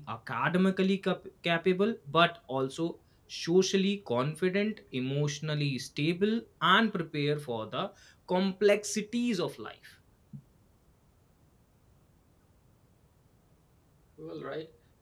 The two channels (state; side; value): identical; both; correlation 1.00